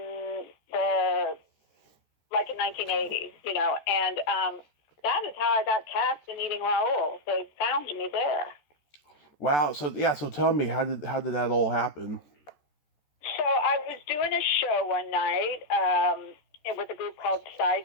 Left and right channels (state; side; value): late; right; 14 ms